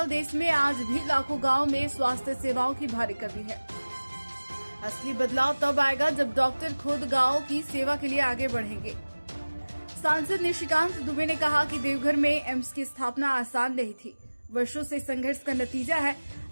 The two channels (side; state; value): both; inverted; correlation -1.00